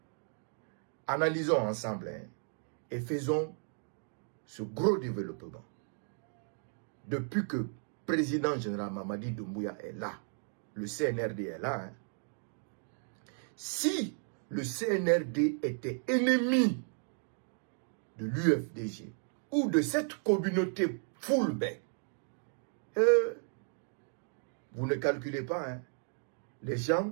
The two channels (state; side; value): silent; left; 55 dB below the other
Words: analysons ensemble et faisons ce gros développement. Depuis que le président général Mamadi Doumbouya est là, le CNRD est là. Si le CNRD était ennemi de l'UFDG ou de cette communauté Fulbe, vous ne calculez pas. Les gens